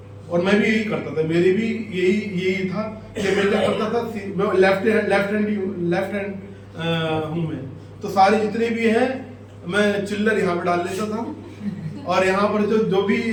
और मैं भी यही करता था, मेरी भी यही था कि मैं क्या करता था, मैं लेफ्ट हैंड हूँ मैं, तो सारे जितने भी हैं मैं चिल्लर यहाँ पे डाल लेता था और यहाँ पर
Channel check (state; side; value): identical; both; correlation 1.00